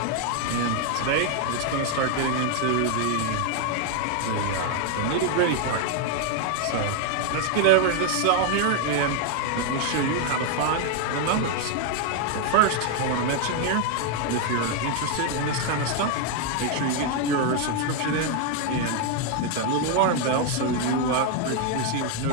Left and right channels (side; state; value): both; different; correlation 0.00